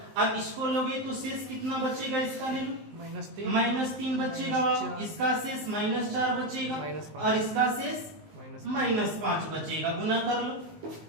अब इसको लोगे तो शेष कितना बचेगा, इसका ले लो -3 बचेगा, इसका शेष -4 बचेगा, और इसका शेष -5 बचेगा। गुना कर लो,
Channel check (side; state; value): left; late; 19 ms